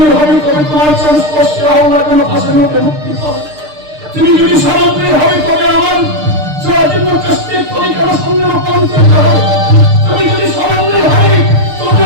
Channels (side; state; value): left; late; 6.6 ms